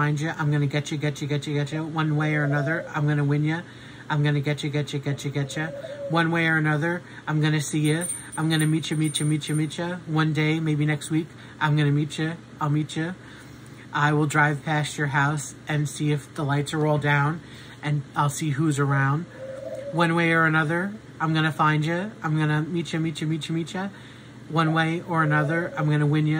you, I'm gonna get you. One way or another, I'm gonna win you. I'm gonna get you. One way or another, I'm gonna see you. I'm gonna meet you. One day, maybe next week, I'm gonna meet you. I'll meet you. I will drive past your house and see if the lights are all down, and I'll see who's around. One way or another, I'm gonna find you. I'm gonna meet you. One way or another, I'm gonna win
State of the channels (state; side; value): identical; both; correlation 1.00